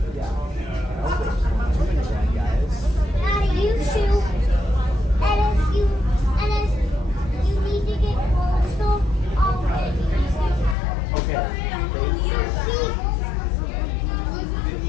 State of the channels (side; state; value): right; drops out; at 10.8 s